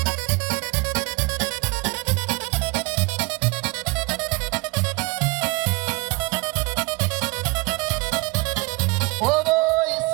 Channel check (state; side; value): quieter; left; 25.6 dB